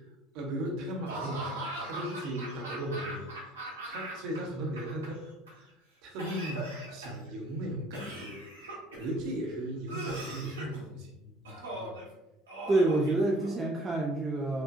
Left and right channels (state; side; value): normal; both; correlation 0.53